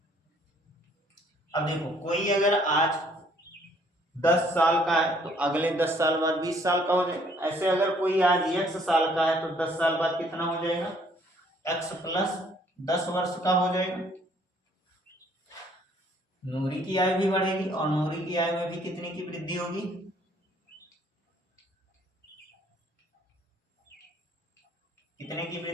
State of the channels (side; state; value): both; normal; correlation 0.62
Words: अब देखो कोई अगर आज 10 साल का है तो अगले 10 साल बाद 20 साल का हो जाएगा। ऐसे अगर कोई आज x साल का है तो 10 साल बाद कितना हो जाएगा, x प्लस 10 वर्ष का हो जाएगा। नूरी की आयु भी बढ़ेगी और नूरी की आयु में भी कितने की वृद्धि होगी, कितने की